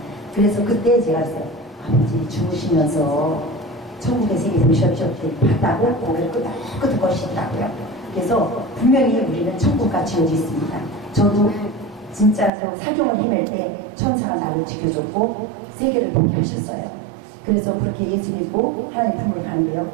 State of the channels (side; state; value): left; drops out; at 12.5 s